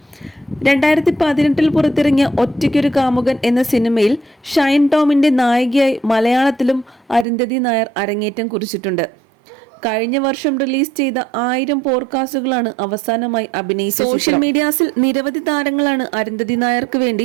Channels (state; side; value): drops out; left; at 7.2 s